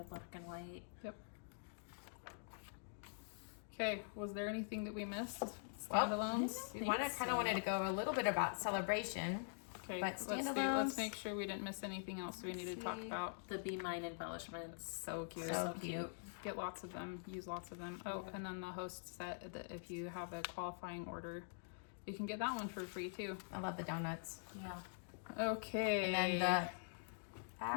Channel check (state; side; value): silent; right; digital silence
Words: black and white. Yep. Okay, was there anything that we missed? Well, Standalones? We kind of wanted to go a little bit about celebration. Okay, But let's make sure we didn't miss anything else we need to talk about. The Be Mine embellishments. So cute. So cute. Get lots of them. Use lots of them. Oh, and then the host set that if you have a qualifying order, you can get that one for free too. I love the donuts. Yeah. Okay. And then